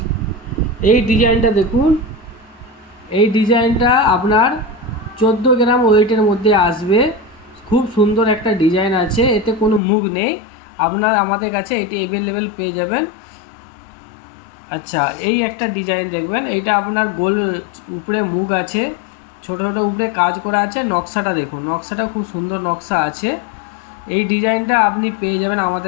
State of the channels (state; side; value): drops out; right; at 9.8 s